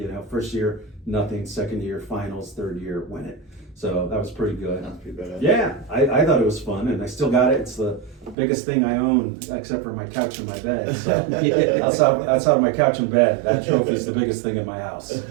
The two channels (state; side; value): drops out; left; at 8.3 s